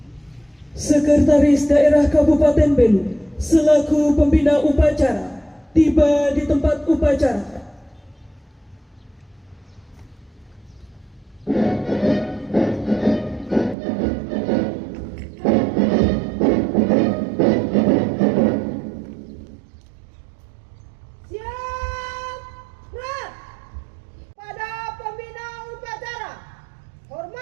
Sekretaris Daerah Kabupaten Belu selaku pembina upacara tiba di tempat upacara.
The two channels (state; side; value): drops out; left; at 13.8 s